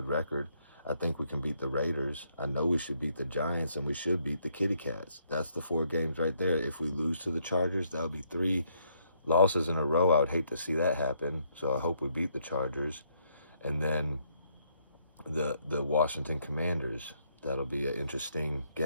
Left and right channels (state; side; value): inverted; both; correlation -0.72